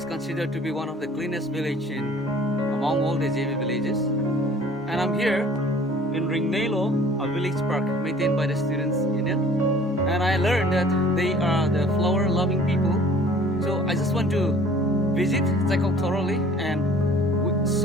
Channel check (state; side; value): normal; both; correlation 0.51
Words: considered to be one of the cleanest village among all the JB villages. And I'm here in Ringnelo, a village park maintained by the Students Union. And I learned that they are the flower loving people. So I just want to visit, check out thoroughly and